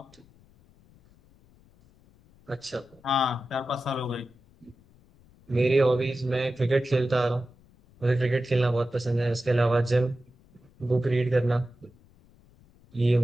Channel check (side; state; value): left; noise; rumble, 29 dB below the sound